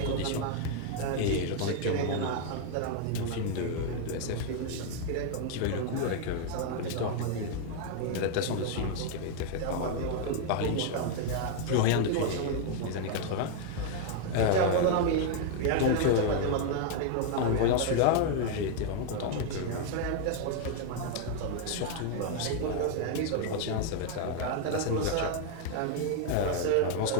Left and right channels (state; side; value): different; both; correlation 0.00